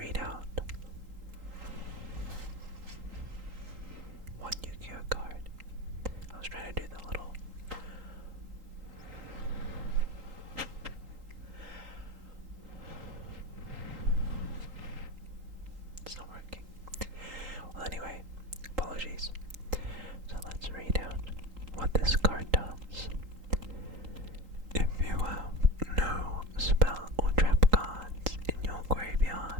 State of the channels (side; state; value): left; late; 3.8 ms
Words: out one Yu-Gi-Oh card? I was trying to do the little... It's not working. Well, anyway, apologies. So let's read out what this card does. If you have no spell or trap cards in your